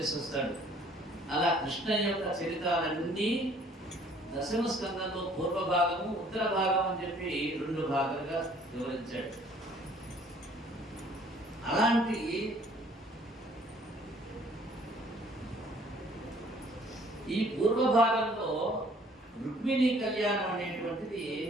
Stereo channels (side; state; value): both; normal; correlation 0.58